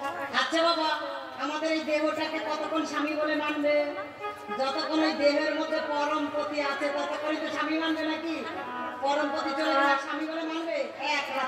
আচ্ছা বাবা, আমাদের এই দেহটাকে কতক্ষণ স্বামী বলে মানবে? যতক্ষণ ওই দেহের মধ্যে পরমপতি আছে ততক্ষণই তো স্বামী মানবে, নাকি? পরমপতি চলে গেলে স্বামী বলে মানবে? এক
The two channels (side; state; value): both; identical; correlation 1.00